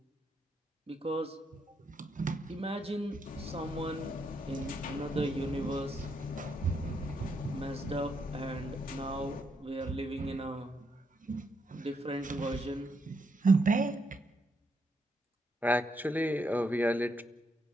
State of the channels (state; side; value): normal; both; correlation 0.78